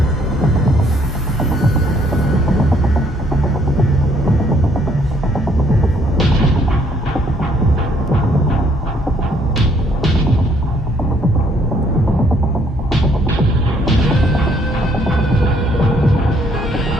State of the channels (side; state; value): both; normal; correlation 0.66